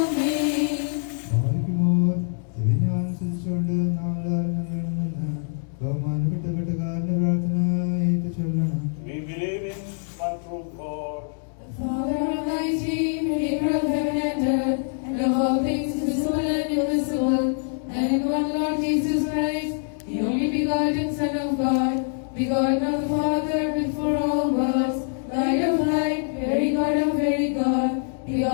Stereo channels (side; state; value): right; silent; 61 dB below the other